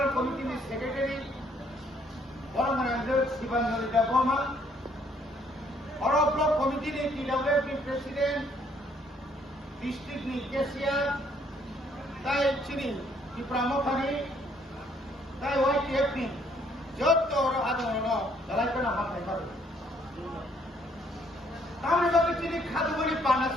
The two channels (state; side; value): normal; both; correlation 0.66